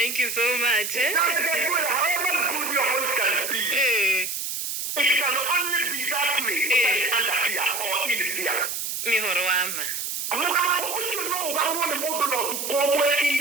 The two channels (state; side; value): noise; right; hiss, 4 dB below the sound